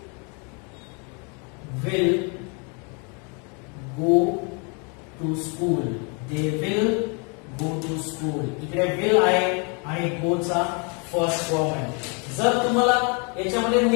will go to school. they will go to school. इकडे will आहे आणि go चा फर्स्ट फॉर्म आहे. जर तुम्हाला याच्यामध्ये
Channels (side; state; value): right; quieter; 34.8 dB